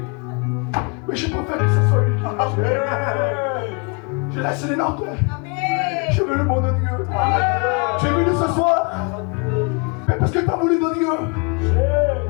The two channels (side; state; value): right; quieter; 33.1 dB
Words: Mais je préfère que ce soit lui qui je laisse les notes. Je veux le monde de Dieu. Tu es venu ce soir. Mais parce que tu as voulu de Dieu.